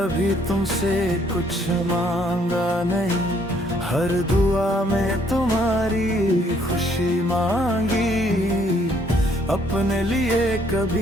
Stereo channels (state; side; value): normal; both; correlation 0.65